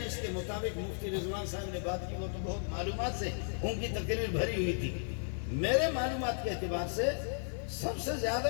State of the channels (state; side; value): silent; right; 55 dB below the other